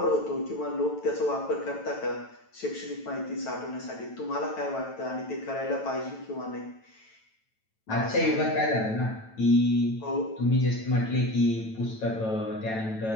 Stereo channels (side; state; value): right; late; 9.1 ms